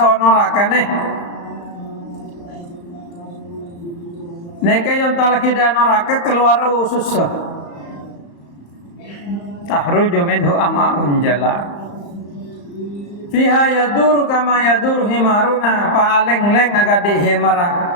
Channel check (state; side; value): late; right; 34 ms